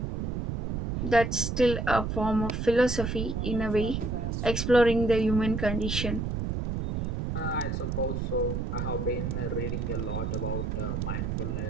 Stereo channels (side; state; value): right; noise; rumble, 2 dB below the sound